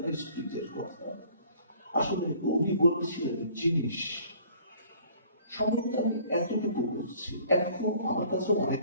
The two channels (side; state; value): both; inverted; correlation -0.54